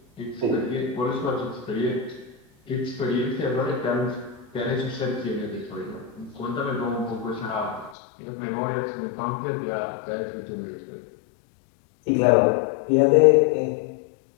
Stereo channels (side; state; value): right; drops out; at 8.0 s